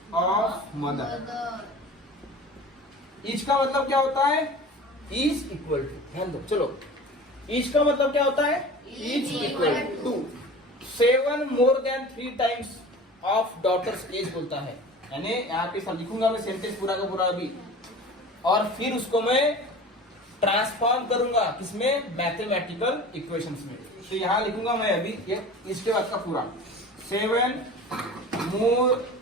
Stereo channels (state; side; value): normal; both; correlation 0.38